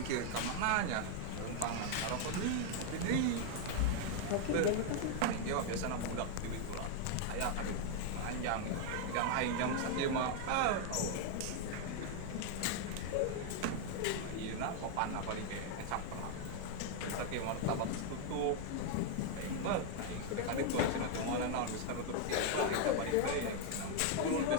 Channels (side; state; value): both; different; correlation 0.00